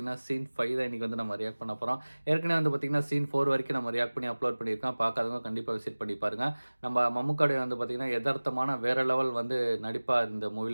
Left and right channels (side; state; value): both; inverted; correlation -1.00